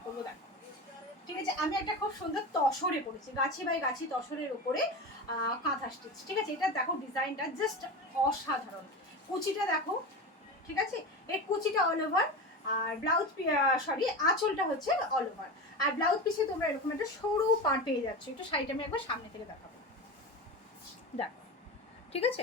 করবো। দেখো, ঠিক আছে, আমি একটা খুব সুন্দর তসরে পড়েছি, গাছি বাই গাছি তসরের উপরে কাঁথা স্টিচ। ঠিক আছে, এটা দেখো ডিজাইনটা জাস্ট অসাধারণ। কুচিটা দেখো, ঠিক আছে, এই কুচিটা অল ওভার, আর ব্লাউজ সরি আঁচলটা হচ্ছে অল ওভার, আর ব্লাউজ পিসে তোমরা এরকম একটা সরু পার পেয়ে যাচ্ছ। একটু শাড়িটা আমি একবার সামনে থেকে দেখাবো, দেখো, ঠিক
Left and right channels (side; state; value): both; normal; correlation 0.25